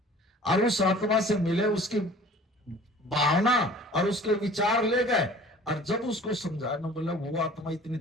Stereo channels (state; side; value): normal; both; correlation 0.47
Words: और उस आत्मा से मिले, उसकी भावना और उसके विचार ले गए, और जब उसको समझाना बोला वो आत्मा इतनी